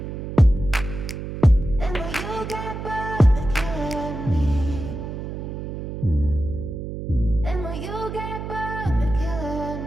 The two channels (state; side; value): noise; right; hum, 7 dB below the sound